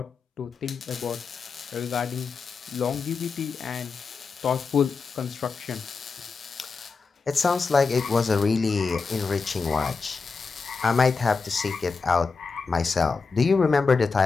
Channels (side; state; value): right; quieter; 4.7 dB